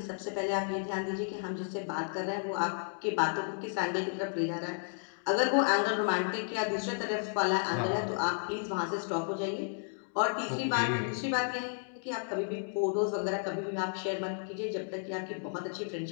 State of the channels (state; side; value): silent; right; 56 dB below the other